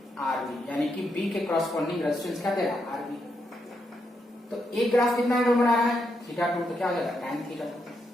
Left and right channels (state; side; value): normal; both; correlation 0.81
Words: RB, यानी कि B के कॉरस्पॉन्डिंग रेजिस्टेंस क्या देगा? RB। तो एक ग्राफ कितना एंगल बना रहा है? थीटा टू, तो क्या हो जाएगा? tan theta two.